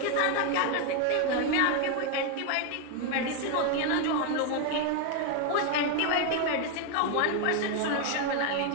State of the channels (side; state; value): both; different; correlation 0.01